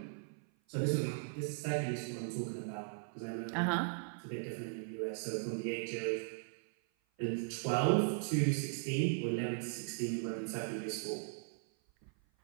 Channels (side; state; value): left; silent; 52 dB below the other